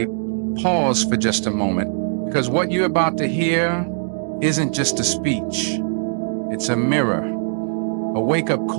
pause for just a moment, because what you're about to hear isn't just a speech. It's a mirror, a wake-up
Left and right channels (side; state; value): left; silent; digital silence